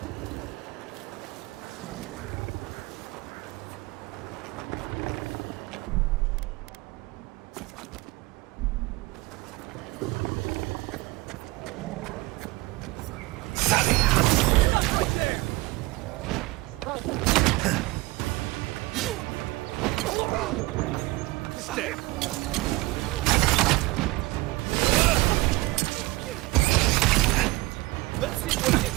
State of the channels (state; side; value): quieter; left; 21.4 dB